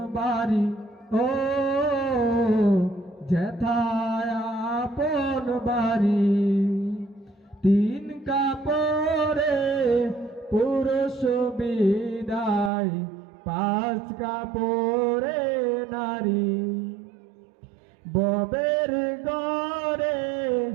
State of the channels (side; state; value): left; drops out; at 12.7 s